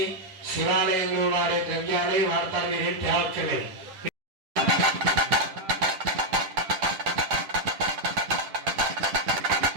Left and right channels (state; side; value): late; left; 10 ms